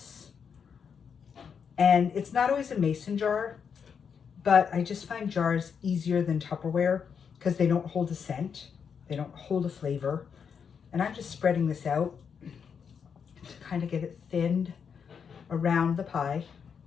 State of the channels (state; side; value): quieter; right; 6.8 dB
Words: And it's not always a mason jar, but I just find jars easier than Tupperware because they don't hold a scent. They don't hold a flavor. And I'm just spreading this out to kind of get it thinned around the pie.